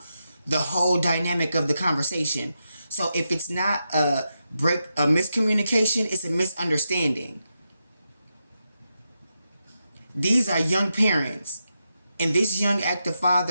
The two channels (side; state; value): both; inverted; correlation -0.86